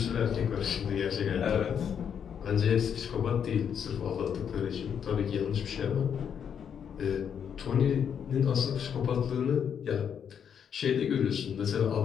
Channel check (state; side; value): quieter; right; 7.9 dB